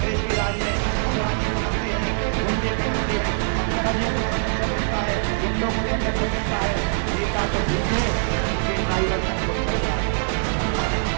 के राज में अपराधी पनपते हैं, गुंडे पनपते हैं, अपराधियों को संरक्षण मिलता है, गुंडों को संरक्षण मिलता है। नेता तो ठीक है, उनके ड्राइवर तक को चढ़ जाते बनाने की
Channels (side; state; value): left; silent; digital silence